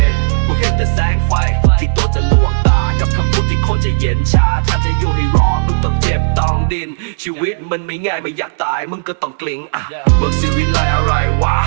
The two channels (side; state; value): left; silent; digital silence